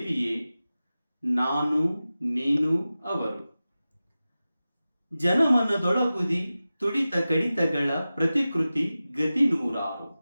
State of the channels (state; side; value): inverted; both; correlation -0.95